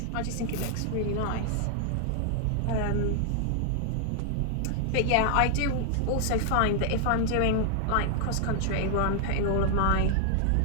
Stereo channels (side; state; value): both; different; correlation 0.00